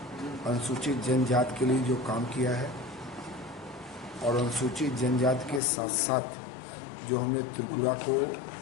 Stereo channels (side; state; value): right; drops out; at 5.6 s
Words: अनुसूचित जनजाति के लिए जो काम किया है और अनुसूचित जनजाति के साथ साथ जो हमने त्रिपुरा को